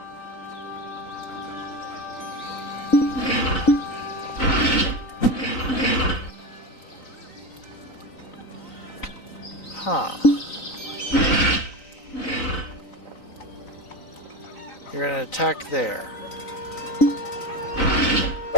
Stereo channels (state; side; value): late; right; 3.9 ms